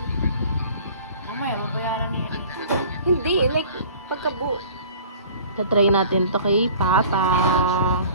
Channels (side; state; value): both; inverted; correlation -0.47